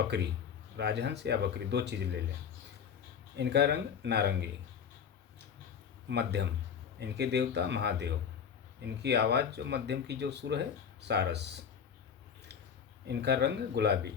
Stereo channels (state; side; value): quieter; right; 7.4 dB